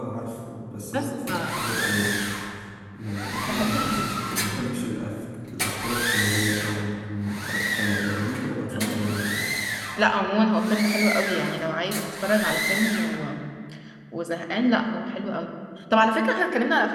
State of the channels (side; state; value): both; identical; correlation 1.00